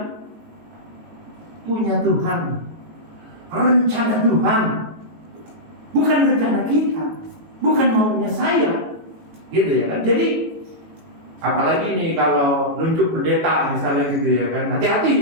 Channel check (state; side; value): late; left; 18 ms